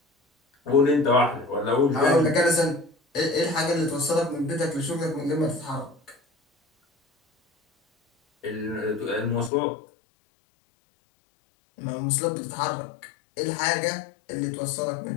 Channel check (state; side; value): drops out; right; at 9.5 s